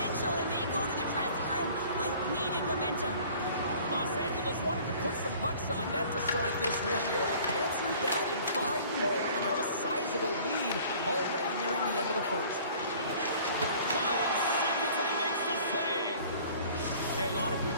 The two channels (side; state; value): both; inverted; correlation -0.50